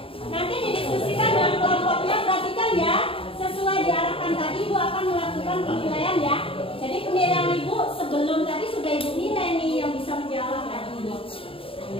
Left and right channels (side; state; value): right; late; 0.27 ms